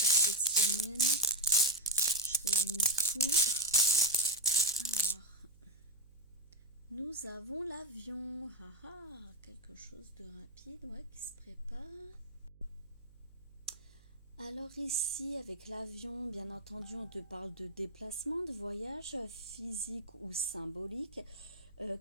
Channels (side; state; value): right; noise; hum, 25 dB below the sound